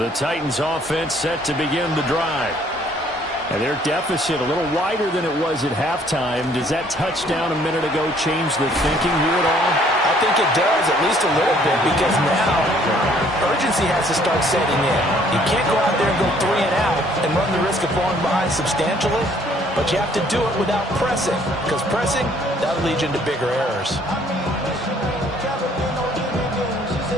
Titans offense set to begin the drive. And their deficit a little wider than it was at halftime. Does that touchdown a minute ago change the thinking here at all? I think it does, at least a little bit, because now urgency has to start setting in. You can't go out there and go 3 and out and run the risk of falling behind substantially, but you have to do it without pressing, because pressing, that'll lead you into bigger errors.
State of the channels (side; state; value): both; normal; correlation 0.61